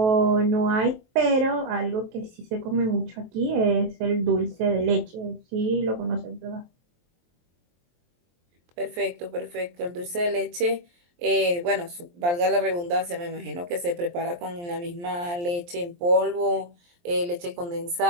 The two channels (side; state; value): left; late; 23 ms